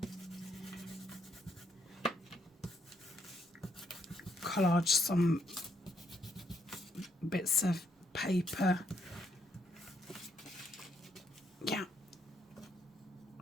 Collage some bits of paper. Yeah.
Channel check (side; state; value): both; normal; correlation 0.74